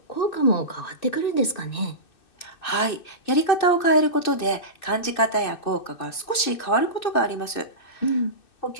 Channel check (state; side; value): late; right; 2.6 ms